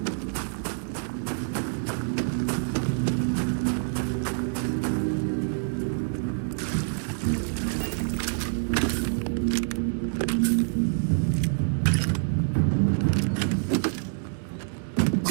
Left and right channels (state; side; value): silent; left; digital silence